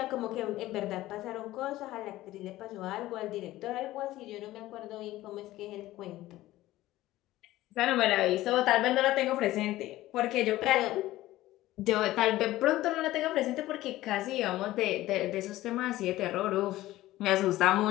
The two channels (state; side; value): quieter; right; 16.1 dB